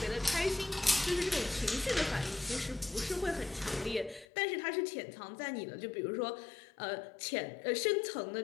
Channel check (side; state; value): right; drops out; at 4.2 s